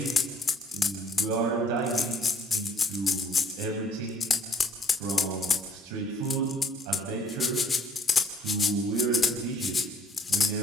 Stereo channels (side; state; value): both; normal; correlation 0.60